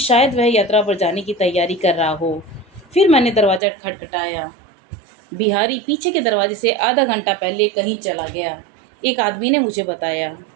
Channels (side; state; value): left; drops out; at 3.6 s